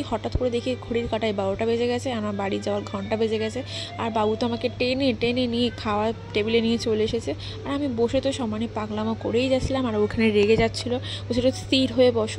হঠাৎ করে দেখি ঘড়ির কাঁটায় 12টা বেজে গেছে, আমার বাড়ি যাওয়ার ঘন্টা বেজে গেছে। আর বাবু তো আমাকে টেনে টেনে নিয়ে খাওয়ার টেবিলে নিয়ে চলে এসেছে। আর আমি বসে তো সমানে পাগলামো করেই যাচ্ছিলাম। আর ওখানে রেগে যাচ্ছিলো, বলছিল স্থির হয়ে বসো,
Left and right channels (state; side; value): identical; both; correlation 1.00